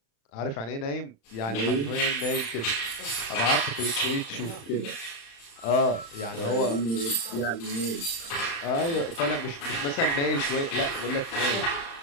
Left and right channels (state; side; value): late; right; 35 ms